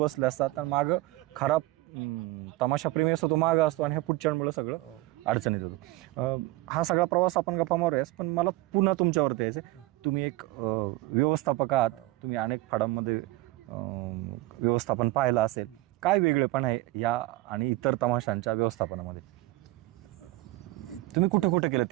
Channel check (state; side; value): quieter; left; 18.9 dB